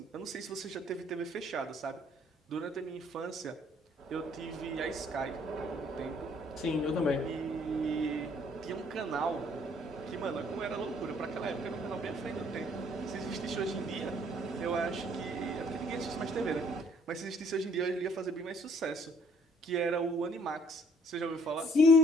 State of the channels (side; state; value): both; normal; correlation 0.62